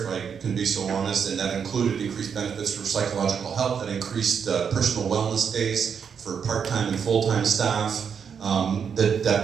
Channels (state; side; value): quieter; left; 7.0 dB